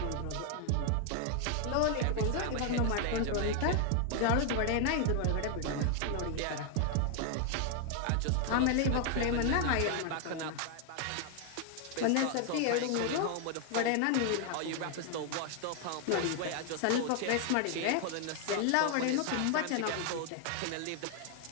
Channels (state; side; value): different; both; correlation 0.00